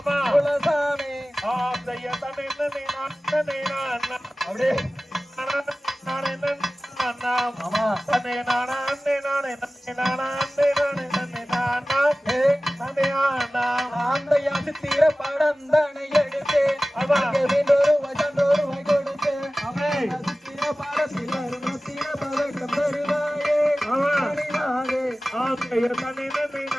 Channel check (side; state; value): both; normal; correlation 0.97